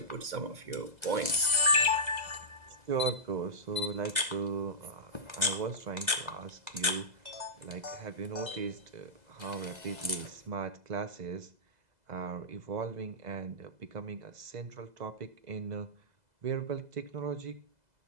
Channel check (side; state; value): left; late; 2.0 ms